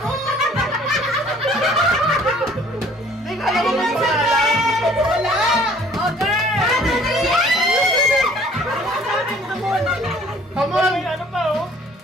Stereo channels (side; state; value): both; normal; correlation 0.55